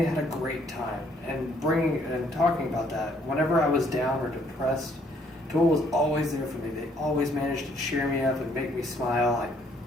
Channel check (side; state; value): both; normal; correlation 0.66